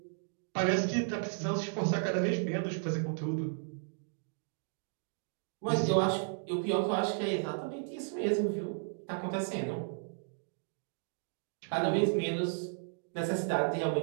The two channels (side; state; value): left; silent; digital silence